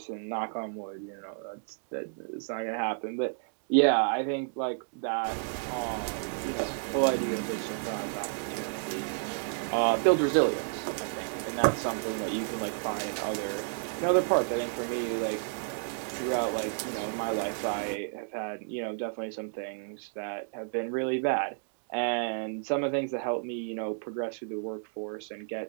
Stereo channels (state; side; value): silent; left; digital silence